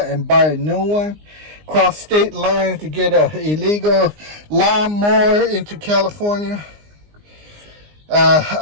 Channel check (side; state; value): left; late; 19 ms